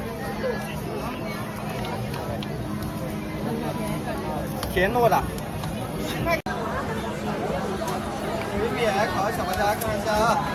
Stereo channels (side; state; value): both; identical; correlation 1.00